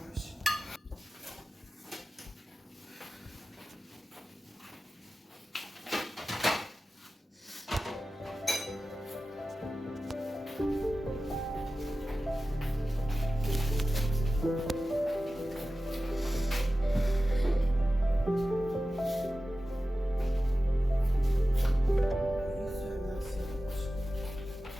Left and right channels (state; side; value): normal; both; correlation 0.95